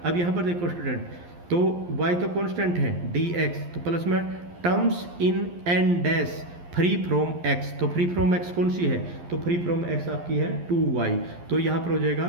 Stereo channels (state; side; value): late; left; 11 ms